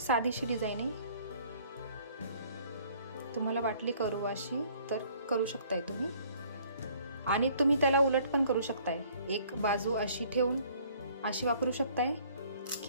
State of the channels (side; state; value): both; inverted; correlation -0.58